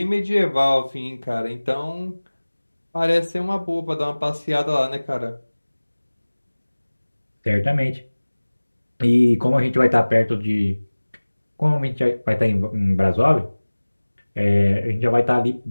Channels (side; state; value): both; inverted; correlation -1.00